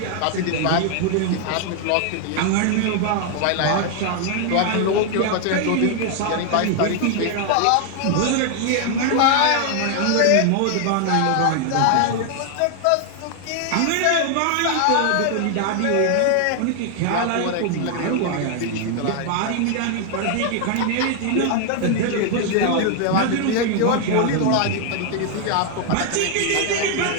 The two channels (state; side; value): different; both; correlation 0.00